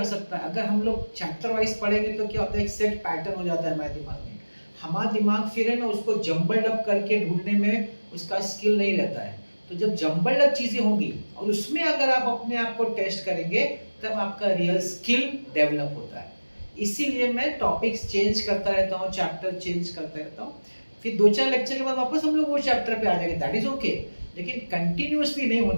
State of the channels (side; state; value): both; inverted; correlation -1.00